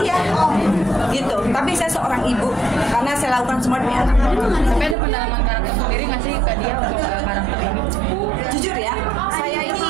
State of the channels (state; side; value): drops out; left; at 5.0 s